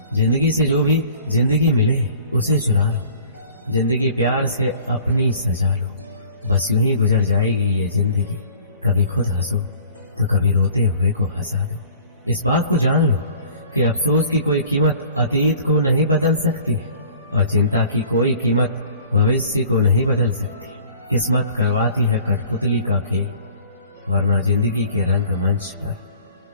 जिंदगी से जो भी जिंदगी मिले उसे चुरा लो, जिंदगी प्यार से अपनी सजा लो। बस यूं ही गुजर जाएगी ये जिंदगी, कभी खुद हंसो तो कभी रोते हुए को हंसा दो। इस बात को जान लो कि अफसोस की कोई कीमत अतीत को नहीं बदल सकती और चिंता की कोई कीमत भविष्य को नहीं बदल सकती। किस्मत करवाती है कठपुतली का खेल, वरना जिंदगी के रंगमंच पर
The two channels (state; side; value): inverted; both; correlation -0.49